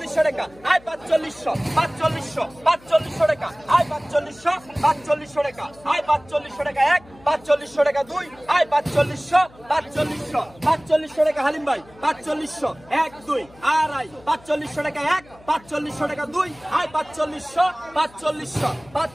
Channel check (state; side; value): noise; left; hum, 25 dB below the sound